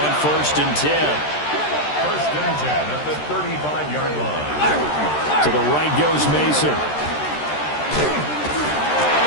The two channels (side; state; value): right; late; 13 ms